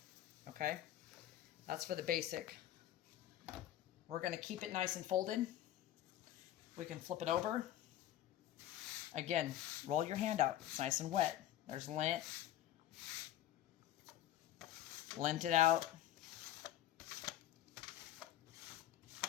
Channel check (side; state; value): right; quieter; 12.9 dB